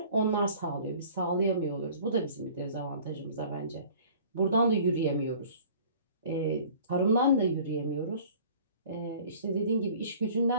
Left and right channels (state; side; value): inverted; both; correlation -0.48